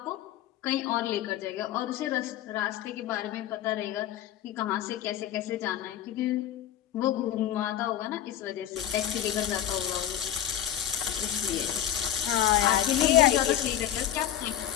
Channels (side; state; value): right; quieter; 11.1 dB